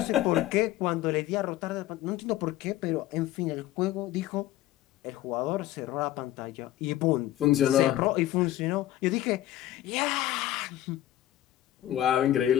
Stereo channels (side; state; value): right; quieter; 14.0 dB